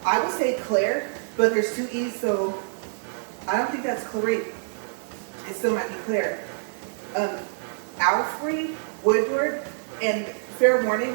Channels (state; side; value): silent; left; 61 dB below the other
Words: I would say Claire, but there's 2 E's, so I don't think that's Clarice. It still might be Claire. Alfred Woodward, and fair